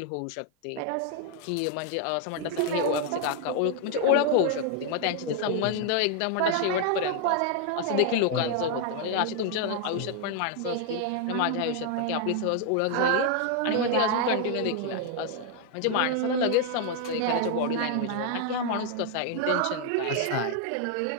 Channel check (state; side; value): different; both; correlation 0.00